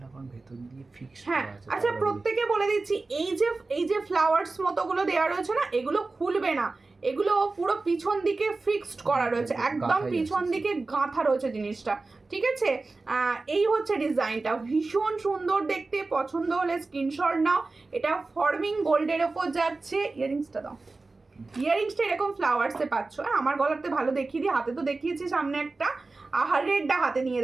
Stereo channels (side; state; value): left; quieter; 3.6 dB